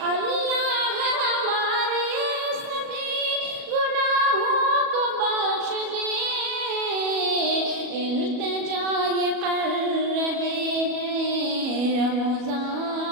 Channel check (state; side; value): late; left; 37 ms